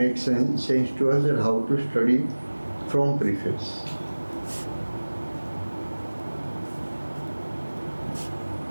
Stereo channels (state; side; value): inverted; both; correlation -1.00